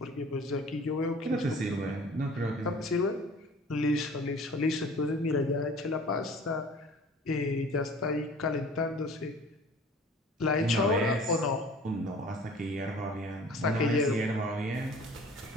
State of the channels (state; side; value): normal; both; correlation 0.46